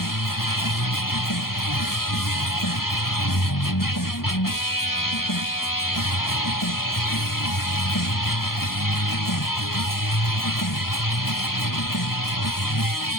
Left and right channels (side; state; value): right; late; 0.92 ms